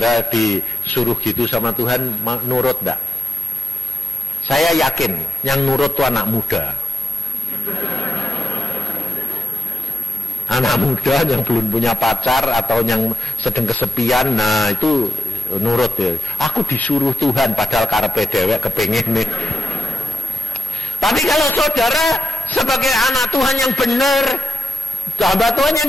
disuruh gitu sama Tuhan, nurut enggak? Saya yakin, yang nurut itu anak muda. Anak muda yang belum punya pacar atau yang sedang kesepian, nah itu nurut ya. Aku disuruh Tuhan padahal karepe dewek kepengen nih. Tapi kalau saudara sebagai anak Tuhan yang benar, hamba Tuhan yang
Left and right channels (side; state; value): both; normal; correlation 0.88